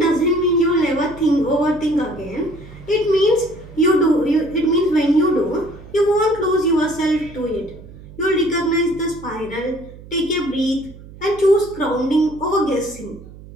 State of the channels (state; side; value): noise; right; hum, 18 dB below the sound